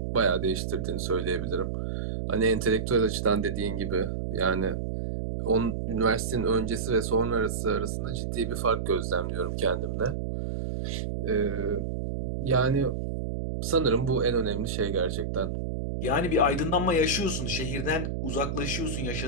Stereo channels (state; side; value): noise; right; hum, 3 dB below the sound